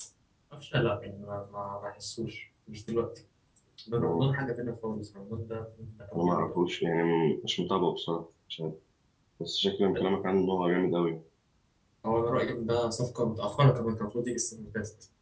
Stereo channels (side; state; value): both; identical; correlation 1.00